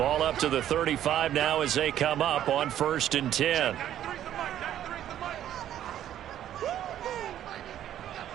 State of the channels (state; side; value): quieter; left; 11.3 dB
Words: up to the 35 now as they come up on 1st and 10.